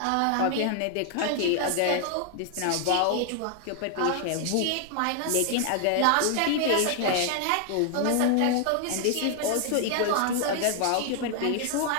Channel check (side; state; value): both; different; correlation 0.00